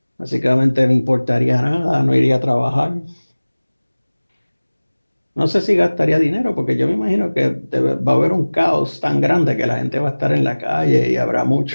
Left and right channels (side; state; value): both; inverted; correlation -1.00